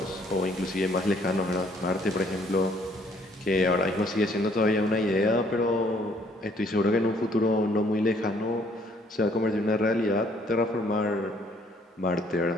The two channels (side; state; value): both; normal; correlation 0.63